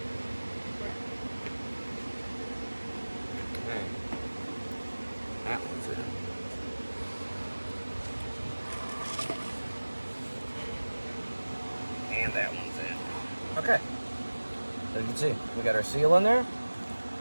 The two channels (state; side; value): inverted; both; correlation -1.00